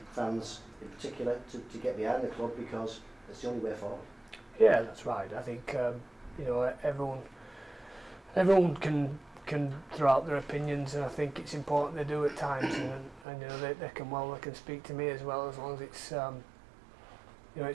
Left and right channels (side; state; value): left; drops out; at 13.2 s